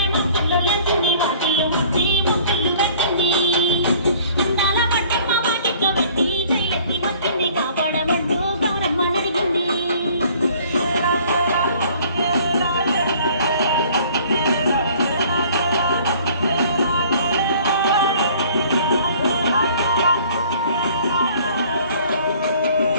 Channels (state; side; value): inverted; both; correlation -0.53